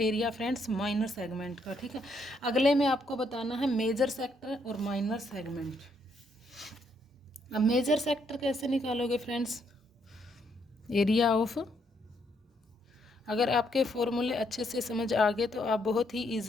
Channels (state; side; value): normal; both; correlation 0.73